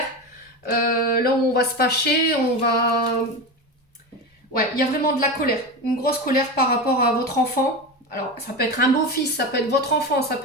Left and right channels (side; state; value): both; normal; correlation 0.22